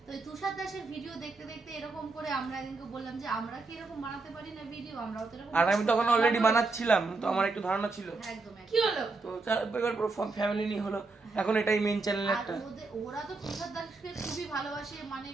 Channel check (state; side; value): quieter; left; 3.7 dB